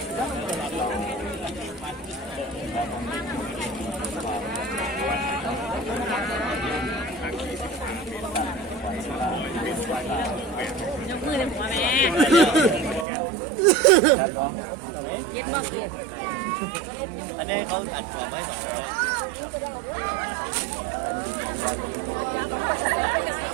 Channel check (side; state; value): left; drops out; at 13.1 s